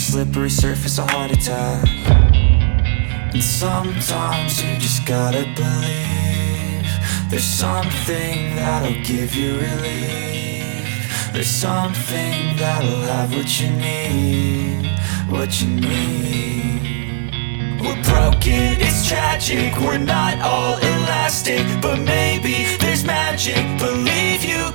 surface, a heart attack. And sometimes you just gotta believe there's something that'll give you relief. There's something that'll have what you need, what you need. We're broken, it's tragic, we're not all elastic, but maybe there's magic. Believe you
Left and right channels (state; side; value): silent; left; 61 dB below the other